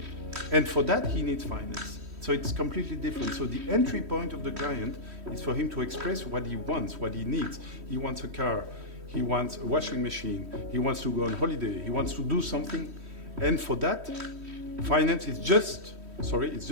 And for that, he needs finance. So it's completely different. So the entry point of the client is for him to express what he wants, what he needs. He wants a car, he wants a washing machine, he wants to go on holiday, he wants to do something. And for that, finance is just a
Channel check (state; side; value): late; left; 3.1 ms